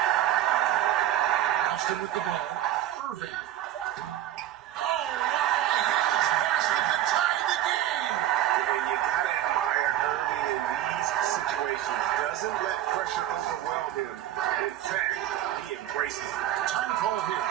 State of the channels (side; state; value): left; quieter; 12.4 dB